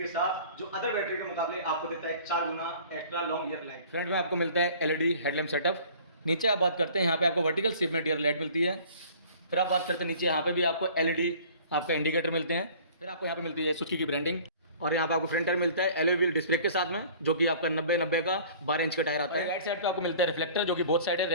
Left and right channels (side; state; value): both; inverted; correlation -0.48